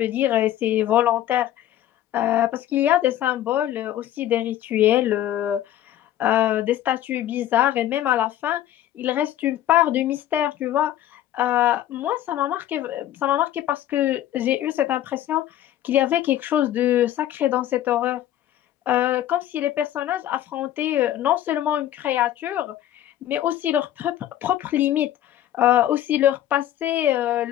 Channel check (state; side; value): quieter; right; 12.5 dB